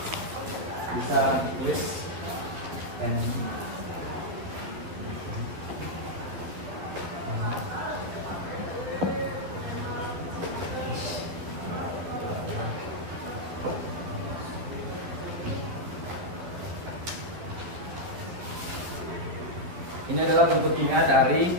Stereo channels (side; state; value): left; late; 12 ms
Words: bisa tulis N. Ini adalah bentuk kimia dari